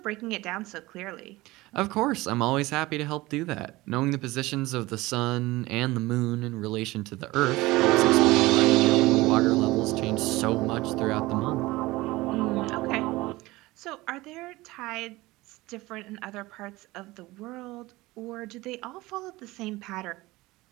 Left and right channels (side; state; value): left; quieter; 19.9 dB